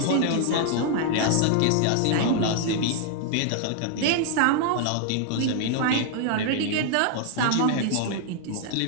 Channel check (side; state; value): both; different; correlation 0.00